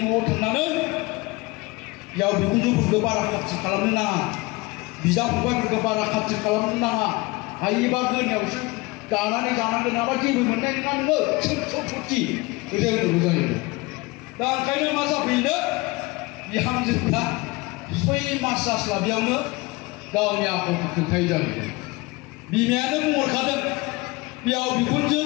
न'आव थांनानै बिहाव बिखुनजोफोरखौ बारा खाथि खालामनो नाङा। बिदा फंबायफोरखौ बारा खाथि खालामनो नाङा। हायोबा गोरनायावसो दानानै जानांगोन नङाबा जेबो मोननाय नङा नोङो सम्पति बेबायदि जायो। दा ओंखायनो मा जाफैनो बिहामजोफ्रा 6 मास जास्लाबियावनो गावनि आखलखौ खोन्थायै जाहैदों। बिमायानो बुंहरखादों बिहाव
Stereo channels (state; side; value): quieter; right; 23.5 dB